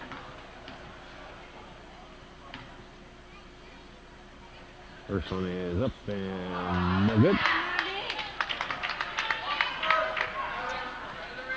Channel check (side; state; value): both; identical; correlation 1.00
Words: First one is up and no good.